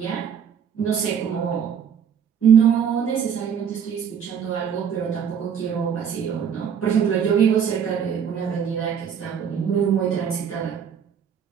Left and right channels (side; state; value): left; quieter; 7.7 dB